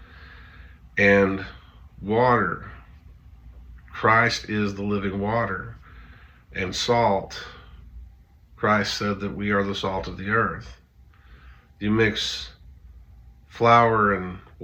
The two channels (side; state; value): both; identical; correlation 1.00